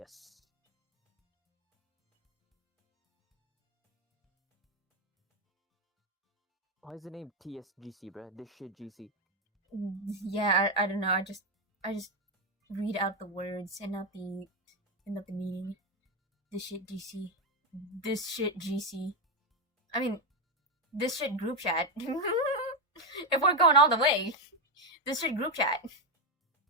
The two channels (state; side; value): normal; both; correlation 0.06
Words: Why is the name TSGC, bruh? This shit GC. Yeah, I don't know. I just read out the words and not the meaning. This shit GC. This shit GC. I mean, this shit group chat. If we're going all the way, this shit group chat.